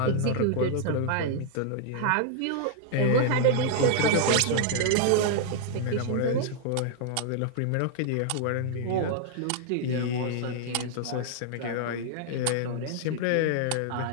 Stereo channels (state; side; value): different; both; correlation 0.00